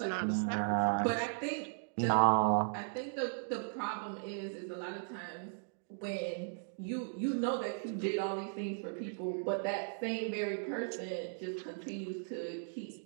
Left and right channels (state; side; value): silent; left; digital silence